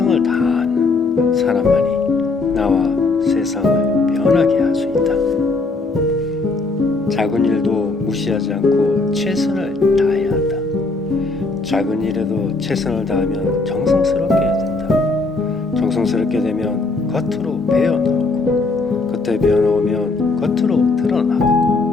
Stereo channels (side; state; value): right; quieter; 3.6 dB